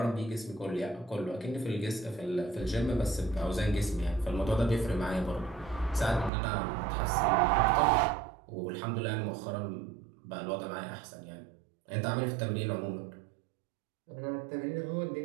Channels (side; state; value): left; drops out; at 6.3 s